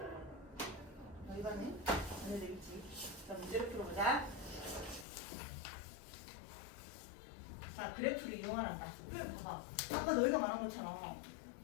이거는 안 해도 되겠지. 자, 문제를 풀어보자. 자, 그래프를 이용하란다. 그래, 봐봐. 아까 너희가 말한 것처럼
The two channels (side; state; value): right; drops out; at 5.1 s